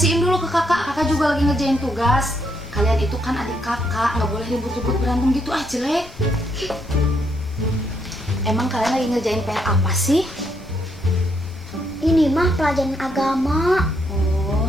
dulu ke kakak. Kakak juga lagi ngerjain tugas. Kalian itu kan adik kakak, nggak boleh ribut-ribut berantem gitu, jelek. Emang kalian lagi ngerjain PR apa sih? Ini mah pelajaran agama. Oh,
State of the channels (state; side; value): noise; left; rumble, 19 dB below the sound